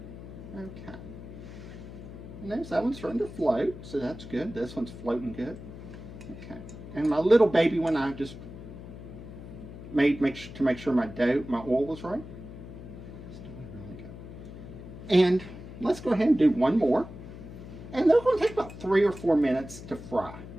Okay. And there's that one's starting to float, so that's good. This one's floating good. Okay. And my little baby one, I just made to make sure my oil was right. It's doing really good. And let's go ahead and do one more. And they're going to take about 3 or 4 minutes to fry.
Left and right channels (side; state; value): left; noise; hum, 13 dB below the sound